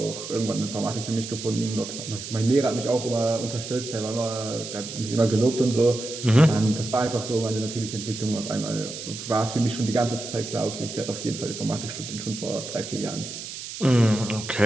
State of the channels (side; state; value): right; noise; hiss, 9 dB below the sound